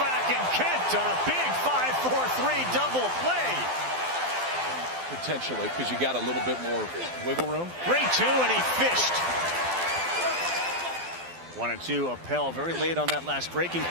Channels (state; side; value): late; left; 12 ms